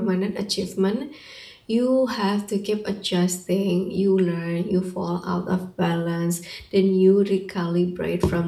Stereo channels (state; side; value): identical; both; correlation 1.00